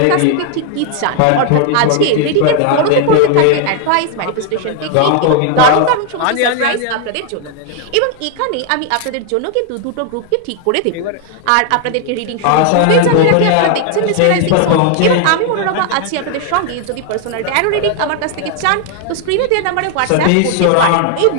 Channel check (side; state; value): both; different; correlation 0.00